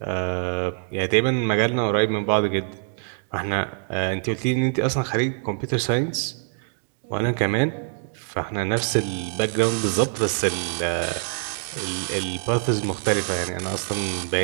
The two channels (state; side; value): silent; left; digital silence